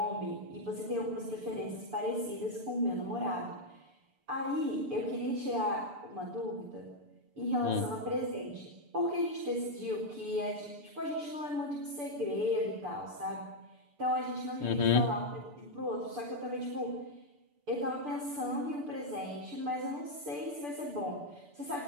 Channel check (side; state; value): left; late; 6.8 ms